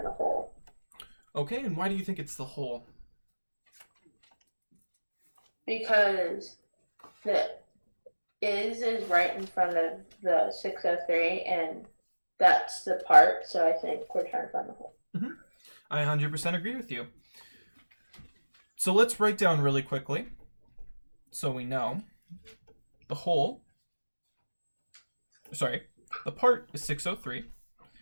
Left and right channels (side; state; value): both; inverted; correlation -1.00